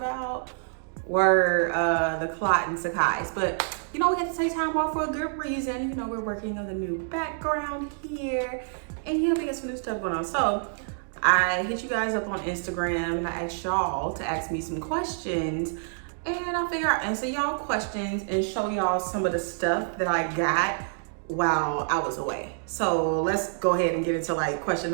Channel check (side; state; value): left; silent; digital silence